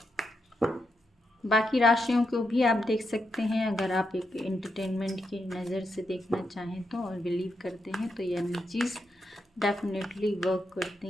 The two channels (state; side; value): normal; both; correlation 0.83